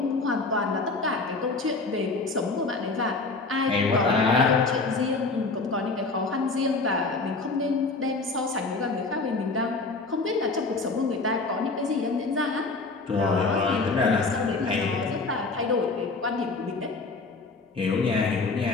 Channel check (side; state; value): right; quieter; 3.7 dB